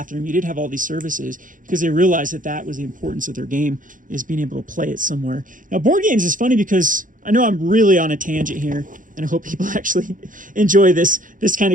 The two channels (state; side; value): late; left; 0.39 ms